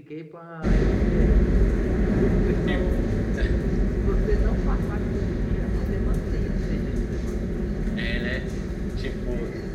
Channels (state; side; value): identical; both; correlation 1.00